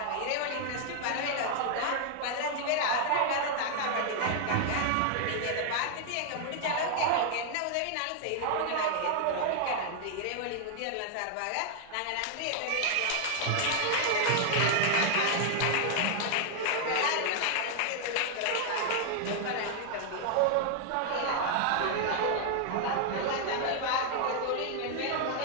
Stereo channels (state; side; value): different; both; correlation 0.00